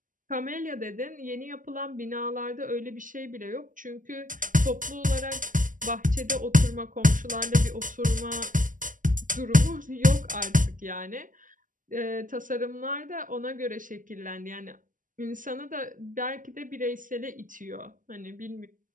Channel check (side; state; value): left; late; 0.38 ms